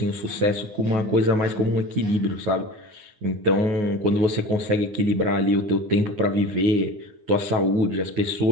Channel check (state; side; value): late; left; 9.2 ms